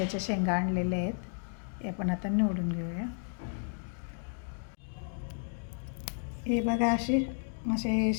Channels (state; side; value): silent; right; 56 dB below the other